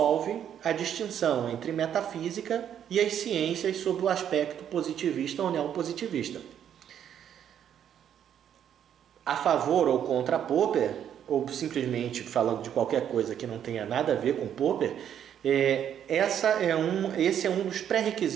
a distinção entre metafísica e as ciências sob o aspecto positivista ou neopositivista. A favor ou contra Popper, ou simplesmente falando de qualquer coisa que não tenha nada a ver com Popper, esse é um dos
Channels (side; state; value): left; quieter; 9.5 dB